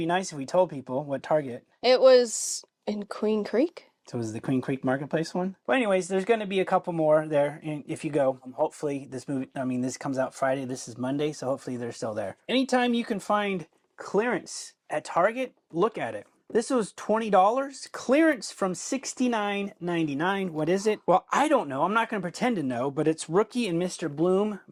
nice if we told people what Target. It was in Queen Creek. So it was the Queen Creek Marketplace one. But anyways, there's going to be a couple more there if you go. Hopefully this comes out Friday. This is Monday, so hopefully they're still there. Anytime you can find clearance at Target, look at it. This was $20. Clearance from $69.99. What is it? Well, I don't know. I'm not going to pretend to know, but it's Rookie and Mr. Bloom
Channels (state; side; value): identical; both; correlation 1.00